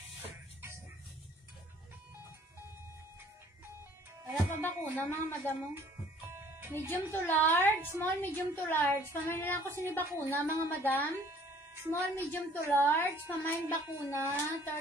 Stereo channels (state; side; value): normal; both; correlation 0.56